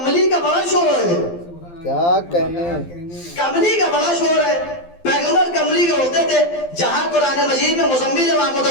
کا بڑا شور ہے. کیا کہنے کملی کا بڑا شور ہے. پیغمبر کملی کے ہوتے تھے, جہاں قرآن مجید میں مزمل و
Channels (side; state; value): right; late; 12 ms